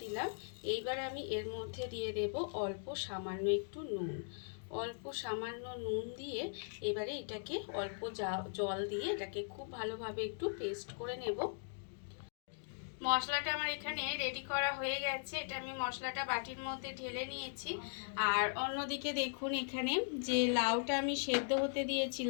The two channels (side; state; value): right; silent; digital silence